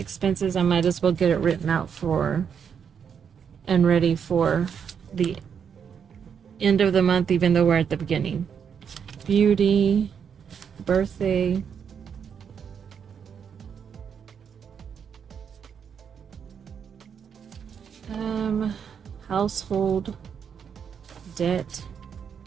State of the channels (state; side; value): quieter; left; 7.3 dB